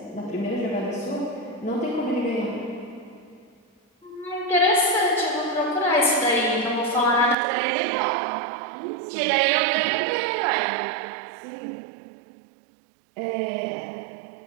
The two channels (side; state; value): left; drops out; at 7.4 s